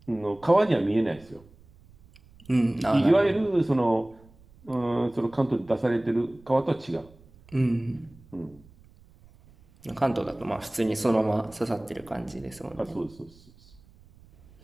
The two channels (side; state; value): right; noise; rumble, 26 dB below the sound